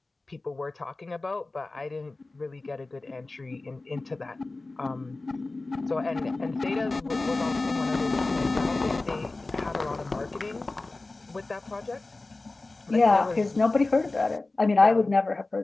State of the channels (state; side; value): quieter; right; 3.2 dB